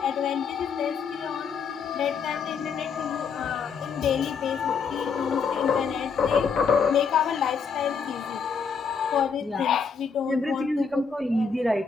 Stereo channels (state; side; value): quieter; right; 5.8 dB